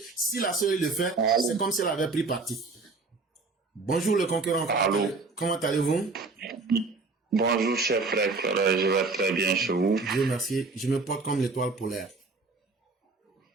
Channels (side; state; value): left; quieter; 3.9 dB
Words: si la CE le fait, c'est comme si elle avait pris parti. Bonjour le concurrent. Allô. Comment allez-vous? Bonjour cher frère, je vais très bien chez vous. Dieu merci. Je me porte comme l'étoile polaire.